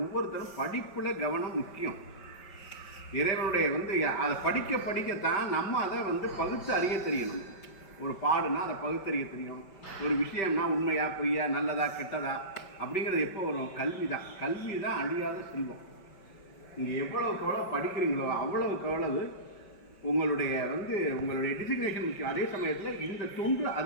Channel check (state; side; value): late; right; 5.1 ms